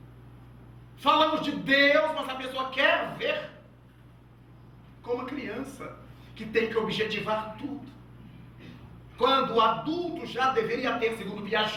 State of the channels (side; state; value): both; identical; correlation 1.00